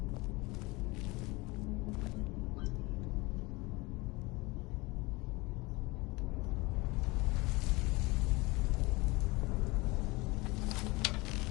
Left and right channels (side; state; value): right; quieter; 23.5 dB